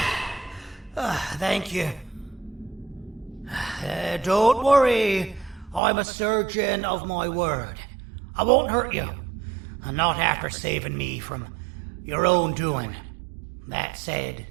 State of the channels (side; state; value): left; drops out; at 5.8 s